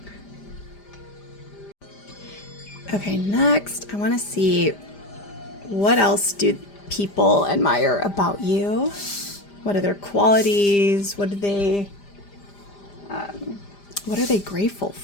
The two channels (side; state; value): right; late; 5.0 ms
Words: Okay, next I want to see what else do people admire about you. What are their qualities? What are they grateful